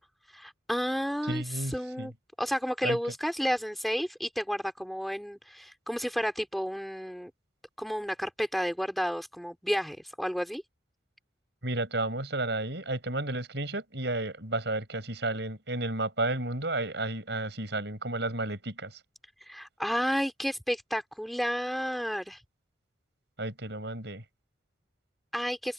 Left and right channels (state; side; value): normal; both; correlation 0.63